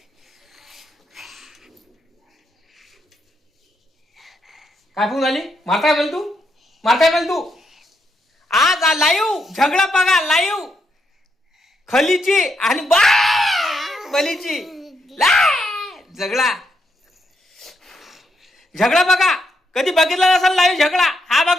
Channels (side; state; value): both; normal; correlation 0.79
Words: काय फोन झाली? मारताय बोल तू, मारताय बोल तू. आज लाईव्ह झगडा बघा. लाईव्ह खलीची आणि बलीची झगडा झगडा बघा. कधी बघितला नसेल लाईव्ह झगडा. हा